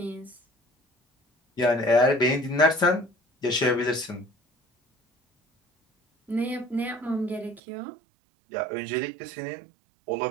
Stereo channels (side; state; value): left; drops out; at 7.6 s